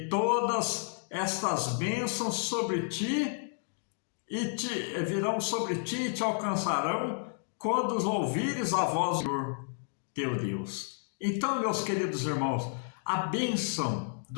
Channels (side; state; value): right; silent; 57 dB below the other